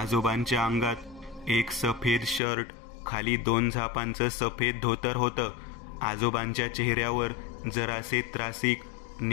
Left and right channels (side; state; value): right; drops out; at 2.4 s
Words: अंगात एक सफेद शर्ट, खाली 2 झापांचं सफेद धोतर होतं. आजोबांच्या चेहऱ्यावर जरासे त्रासिक